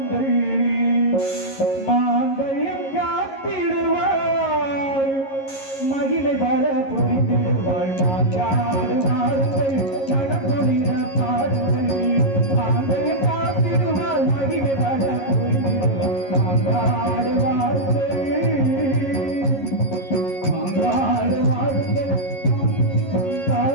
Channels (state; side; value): late; right; 11 ms